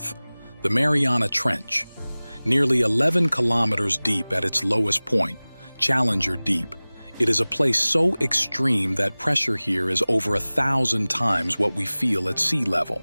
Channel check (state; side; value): inverted; both; correlation -0.99